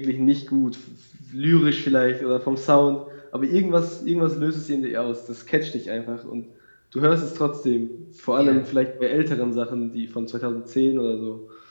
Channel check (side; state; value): both; inverted; correlation -1.00